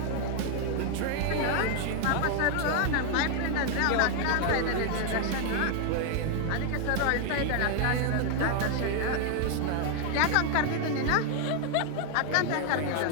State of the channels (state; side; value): different; both; correlation 0.00